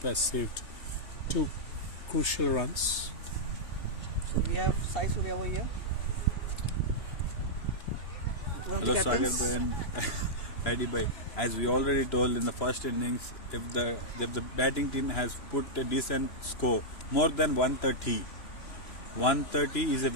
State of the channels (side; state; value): right; late; 2.9 ms